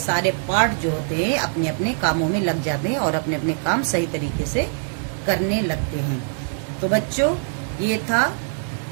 पार्ट जो होते हैं अपने अपने कामों में लग जाते हैं और अपने अपने काम सही तरीके से करने लगते हैं। तो बच्चों, ये था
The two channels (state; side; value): silent; left; 64 dB below the other